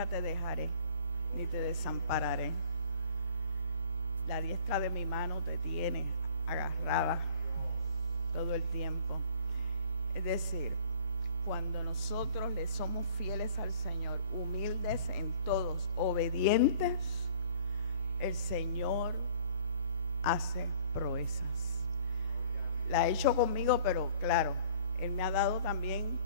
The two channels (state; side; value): inverted; both; correlation -0.52